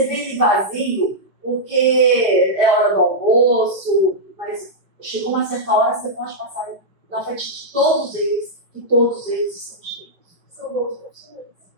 vê ele vazio, porque é hora do almoço, mas chegou uma certa hora, você pode passar na frente de todos eles, e todos eles estão cheios. São bons profissionais.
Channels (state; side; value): late; left; 5.2 ms